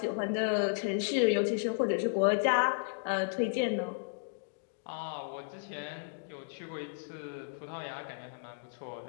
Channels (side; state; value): right; silent; digital silence